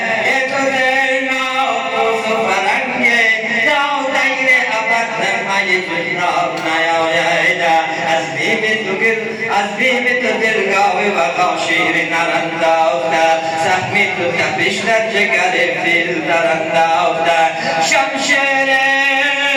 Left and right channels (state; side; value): identical; both; correlation 1.00